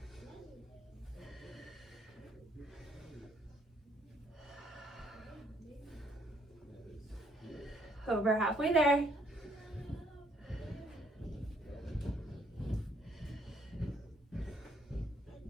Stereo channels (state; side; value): normal; both; correlation 0.67